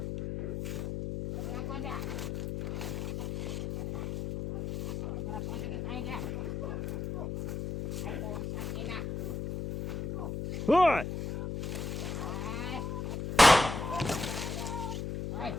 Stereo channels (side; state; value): left; noise; hum, 4 dB below the sound